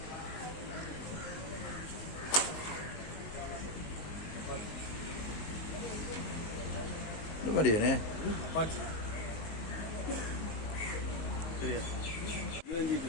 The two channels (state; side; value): late; right; 19 ms